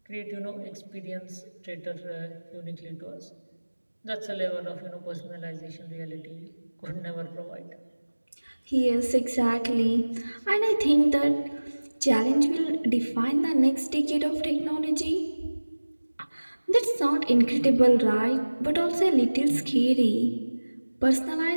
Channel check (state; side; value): inverted; both; correlation -1.00